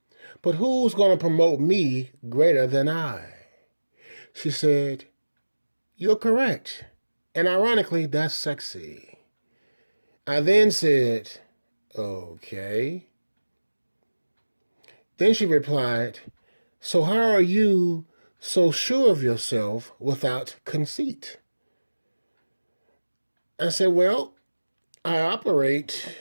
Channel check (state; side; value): inverted; both; correlation -1.00